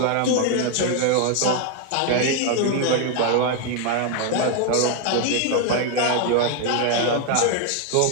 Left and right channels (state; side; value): different; both; correlation 0.01